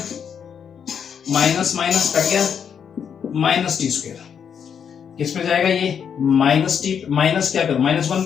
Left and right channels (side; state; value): right; quieter; 7.5 dB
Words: minus minus cut गया माइनस टी स्क्वायर, किस पे जाएगा ये माइनस टी, माइनस क्या करो -1